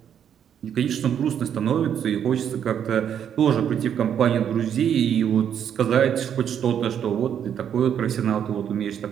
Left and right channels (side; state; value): left; quieter; 8.9 dB